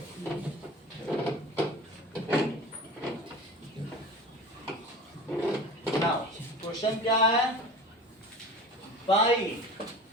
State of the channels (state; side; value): normal; both; correlation 0.36